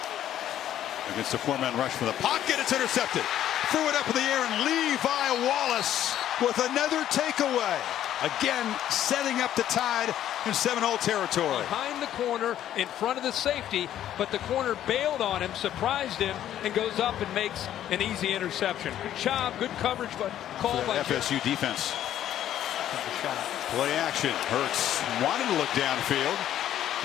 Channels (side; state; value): right; quieter; 11.5 dB